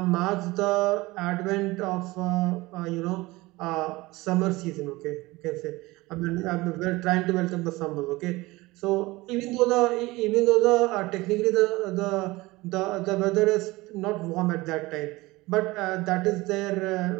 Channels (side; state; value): left; quieter; 20.9 dB